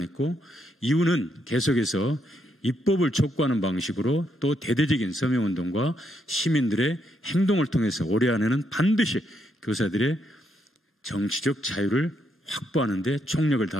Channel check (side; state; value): both; normal; correlation 0.77